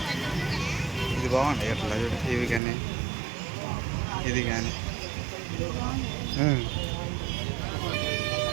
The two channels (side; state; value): left; drops out; at 2.6 s